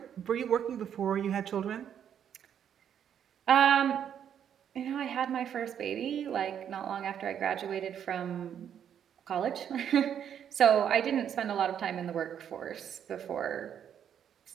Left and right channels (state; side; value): quieter; left; 9.0 dB